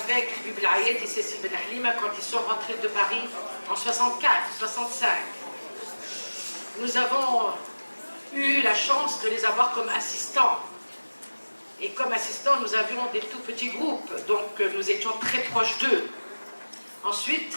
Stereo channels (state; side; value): inverted; both; correlation -1.00